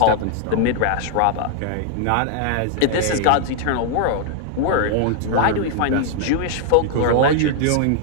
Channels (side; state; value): both; different; correlation 0.00